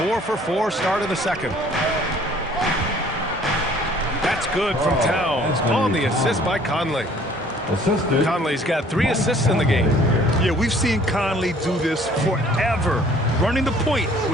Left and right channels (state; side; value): normal; both; correlation 0.56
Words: start of the second. That's good from Towns on the assist by Conley. Assisted. Conley's got 3 assists in the game. Yeah, we've seen Conley do this forever, running the point